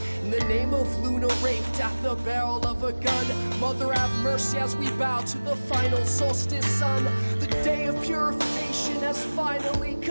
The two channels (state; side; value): inverted; both; correlation -1.00